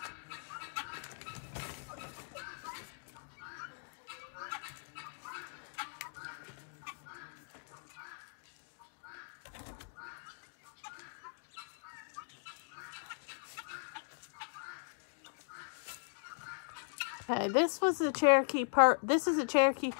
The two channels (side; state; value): right; silent; digital silence